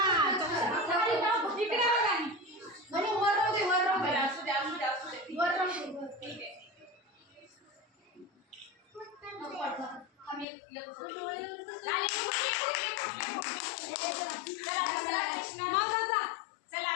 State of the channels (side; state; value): right; drops out; at 10.5 s